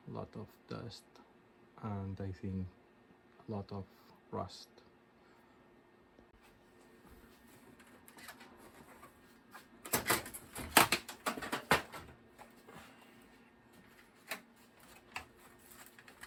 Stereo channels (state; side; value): identical; both; correlation 1.00